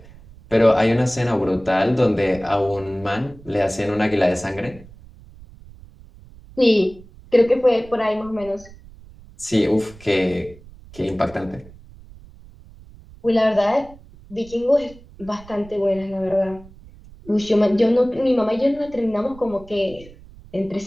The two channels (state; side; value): noise; right; rumble, 21 dB below the sound